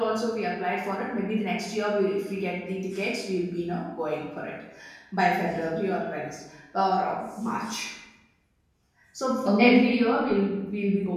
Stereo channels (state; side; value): identical; both; correlation 1.00